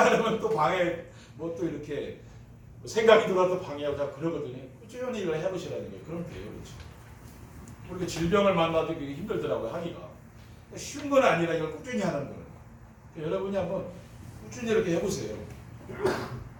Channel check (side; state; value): both; identical; correlation 1.00